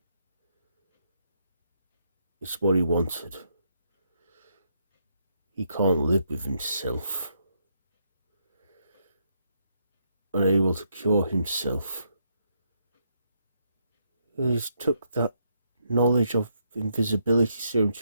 it's what he wanted. He can't live with himself. Unable to cure himself. He's took that knowledge of invisibility serum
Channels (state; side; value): inverted; both; correlation -0.77